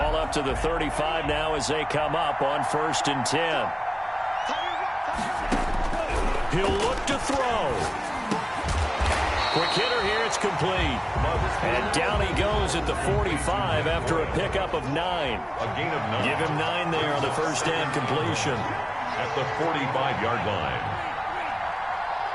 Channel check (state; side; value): identical; both; correlation 1.00